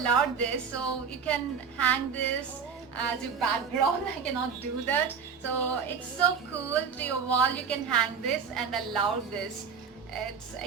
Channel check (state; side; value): quieter; left; 6.2 dB